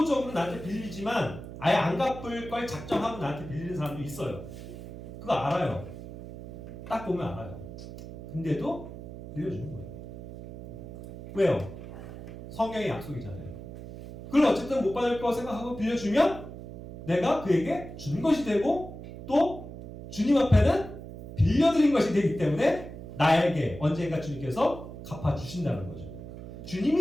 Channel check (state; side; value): noise; right; hum, 12 dB below the sound